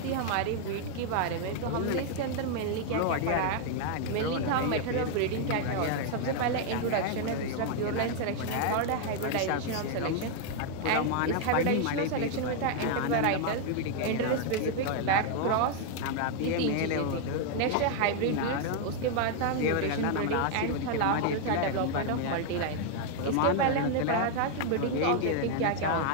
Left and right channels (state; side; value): different; both; correlation 0.00